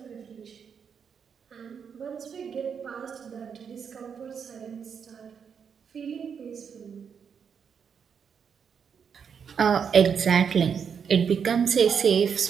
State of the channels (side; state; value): left; quieter; 6.9 dB